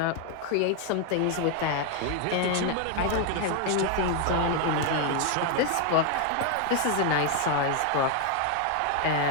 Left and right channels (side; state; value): both; different; correlation 0.00